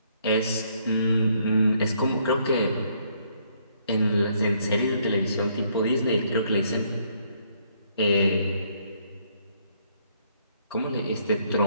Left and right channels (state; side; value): inverted; both; correlation -0.69